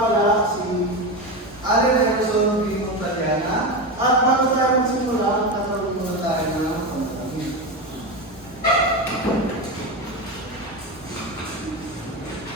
pala si Allen Gerson B. Montaliana. At bago tayo magsimula, kakaroon muna tayo ng panalangin.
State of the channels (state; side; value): normal; both; correlation 0.18